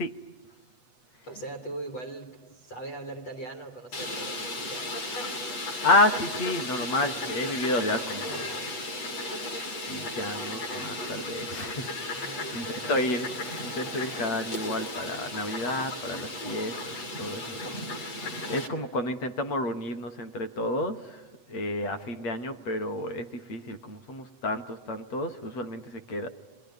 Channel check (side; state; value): right; late; 8.1 ms